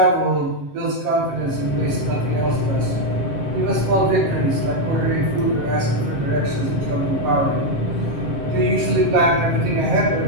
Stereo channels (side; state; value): left; late; 7.7 ms